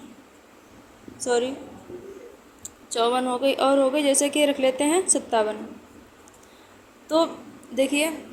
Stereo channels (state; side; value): identical; both; correlation 1.00